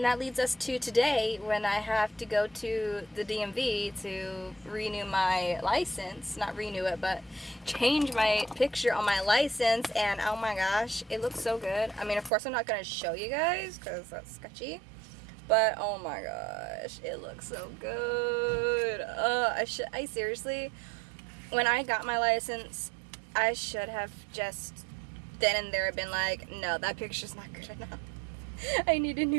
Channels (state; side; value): drops out; left; at 12.3 s